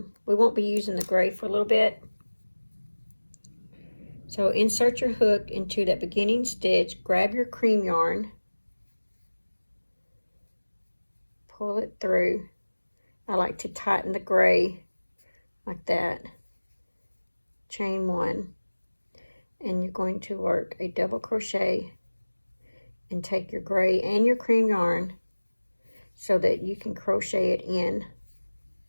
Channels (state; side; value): inverted; both; correlation -1.00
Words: we won't be using the gray for a little bit. So insert your hook into that beginning stitch, grab your cream yarn, pull it through. I like to tighten the gray like that. Chain 1, and you're going to work a double crochet and take your gray and your cream yarn so that you can crochet it in